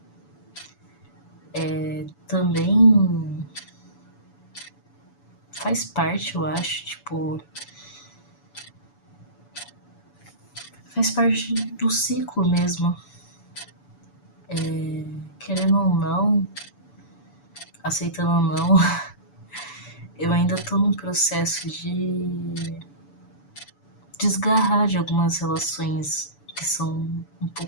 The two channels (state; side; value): late; right; 7.0 ms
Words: Também faz parte, eu acho, tipo... Faz parte do ciclo mesmo. Querendo ou não, aceitando ou não, eu ainda tô num processo de desgarrar de algumas relações que são um